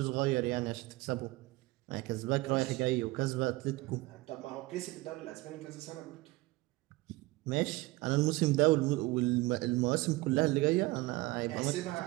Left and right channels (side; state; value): left; quieter; 20.9 dB